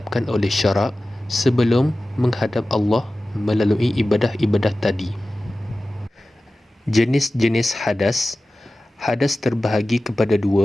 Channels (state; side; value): normal; both; correlation 0.96